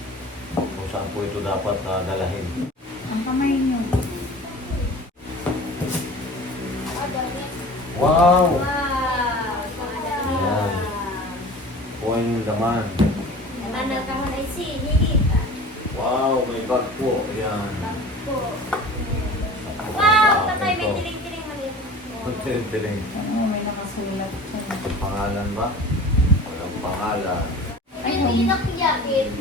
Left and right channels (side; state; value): both; normal; correlation 0.40